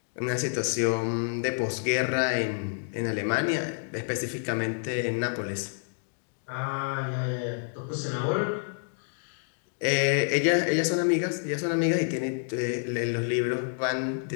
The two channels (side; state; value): right; silent; digital silence